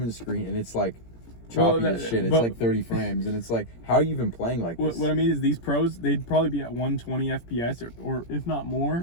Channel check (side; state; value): right; late; 17 ms